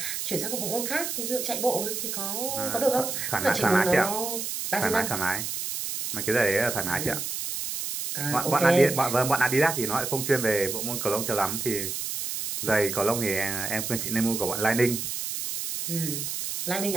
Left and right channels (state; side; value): noise; right; hiss, 4 dB below the sound